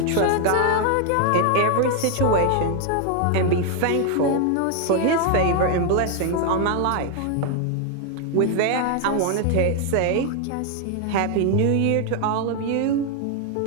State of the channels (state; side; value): different; both; correlation 0.00